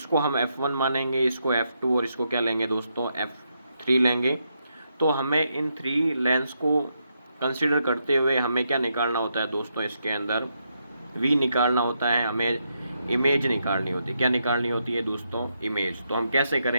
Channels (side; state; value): both; inverted; correlation -0.81